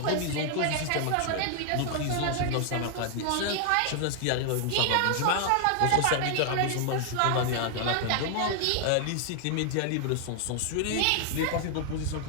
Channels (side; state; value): both; different; correlation 0.00